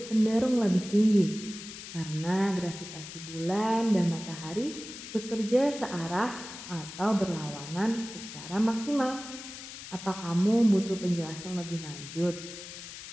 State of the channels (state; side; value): noise; left; hiss, 12 dB below the sound